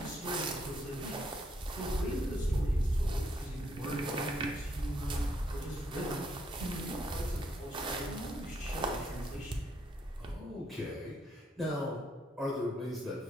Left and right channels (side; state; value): both; normal; correlation 0.74